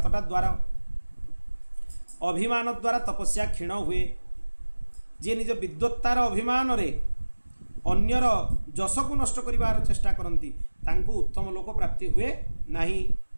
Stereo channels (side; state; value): both; inverted; correlation -1.00